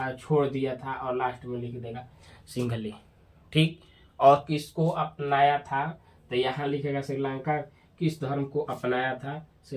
छोड़ दिया था, और लास्ट में लिख देगा सिंघली, ठीक। और किसको अपनाया था, तो यहाँ लिखेगा श्रीलंका किस धर्म को अपनाया था,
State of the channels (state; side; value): identical; both; correlation 1.00